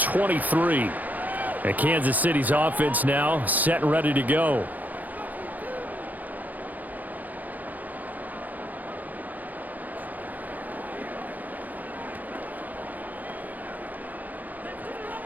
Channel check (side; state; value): left; late; 0.081 ms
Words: And Kansas City's offense now set and ready to go.